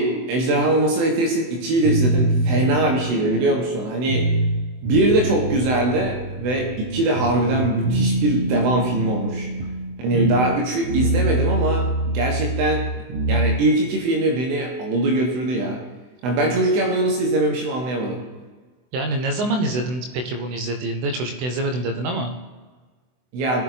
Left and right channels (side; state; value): left; late; 24 ms